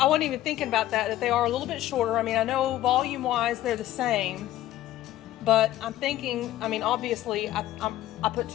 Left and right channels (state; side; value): quieter; right; 14.2 dB